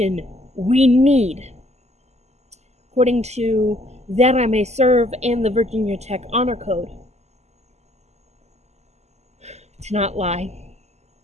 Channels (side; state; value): left; late; 0.32 ms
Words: we need, according to That I May Serve and the Virginia Tech Honor Code, to not lie,